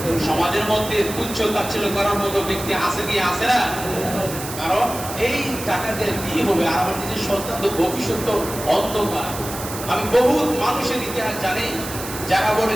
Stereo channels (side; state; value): right; noise; hiss, 10 dB below the sound